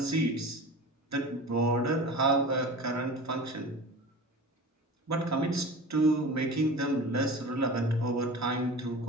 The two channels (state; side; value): normal; both; correlation 0.35